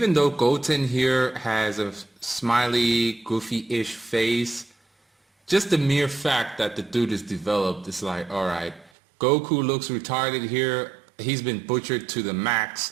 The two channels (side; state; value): left; drops out; at 8.9 s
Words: though Goten here has a smiley, goofy-ish face, just the mere fact that the dude is developed is like, all right, Goku looks retarded here. He's been butchered to the